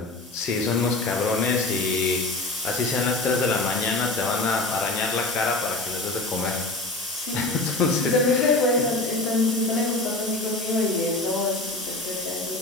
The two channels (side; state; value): right; quieter; 3.1 dB